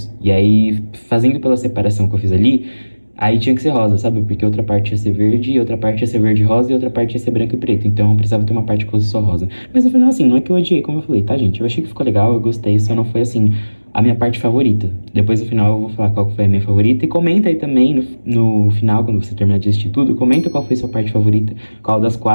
E aí, fazendo pela separação que eu fiz ali, aí tinha que ser rosa, sabe? Porque outra parte ia ser verde, outra parte ia ser verde e rosa, e outra parte ia ser branco e preto. Então eu precisava ter uma parte que fosse só rosa. Mas no final, assim, não é que eu odiei, como eu falei, tá, gente? Eu achei que ficou legal, eu gostei, só não foi, assim, a minha parte favorita. Depois no final eu vou falar qual foi a minha favorita. E comenta aí também no final, quando você terminar de assistir tudo, comenta qual foi a sua parte favorita, qual das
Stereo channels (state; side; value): inverted; both; correlation -1.00